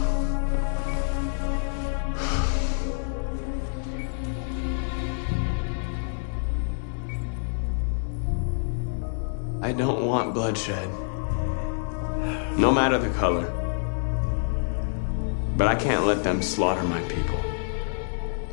I don't want bloodshed. No matter the color. But I can't let them slaughter my people.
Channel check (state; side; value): silent; right; 60 dB below the other